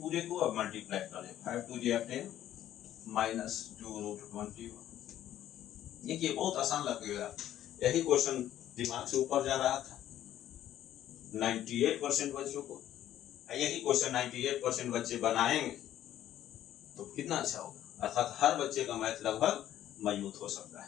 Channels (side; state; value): right; quieter; 12.0 dB